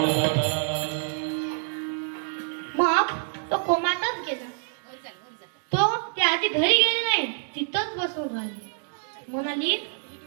मग तो कोमातच गेला. तो त्या आधी घरी गेले नाही, तिथंच बसून राहिली. म्हणाली,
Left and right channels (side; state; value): left; silent; digital silence